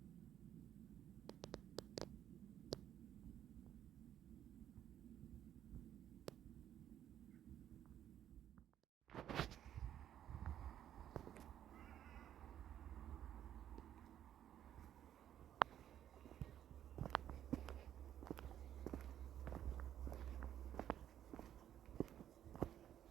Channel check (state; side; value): quieter; left; 10.7 dB